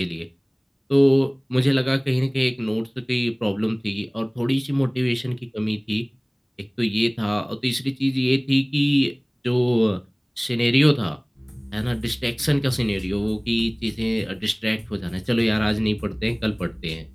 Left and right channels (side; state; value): both; identical; correlation 1.00